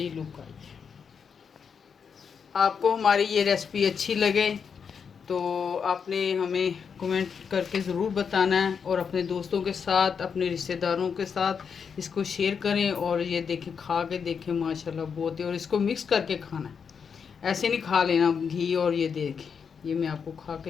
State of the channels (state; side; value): quieter; right; 6.4 dB